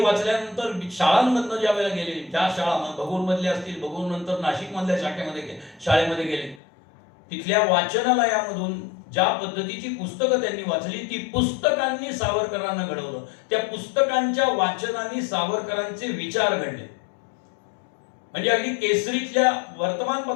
वाचल्यानंतर शाळांमधनं ज्या वेळेला गेले, ज्या शाळा भगूरमधल्या असतील, भगूर नंतर नाशिकमधल्या शाळेमध्ये गेले, तिथल्या वाचनालयामधून ज्या पद्धतीची पुस्तकं त्यांनी वाचली ती पुस्तकांनी सावरकरांना घडवलं. त्या पुस्तकांच्या वाचनाने सावरकरांचे विचार घडले. म्हणजे अगदी केसरीतल्या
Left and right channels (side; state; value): right; drops out; at 6.6 s